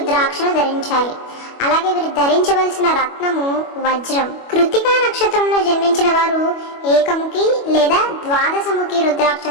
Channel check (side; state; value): right; late; 25 ms